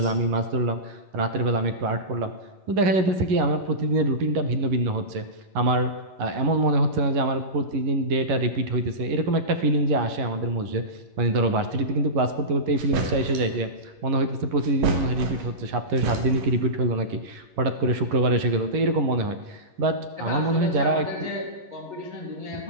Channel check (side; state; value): left; late; 11 ms